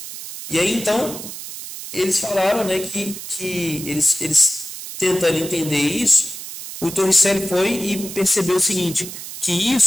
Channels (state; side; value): noise; right; hiss, 10 dB below the sound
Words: E aí, então, eles falaram, né, que eles tentando entender isso, o Torricelli foi e percebeu o seguinte, que